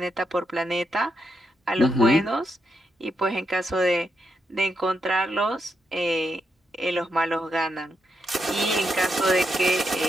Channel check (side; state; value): both; normal; correlation 0.83